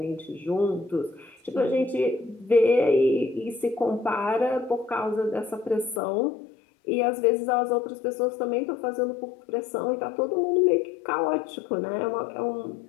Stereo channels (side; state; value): right; drops out; at 6.0 s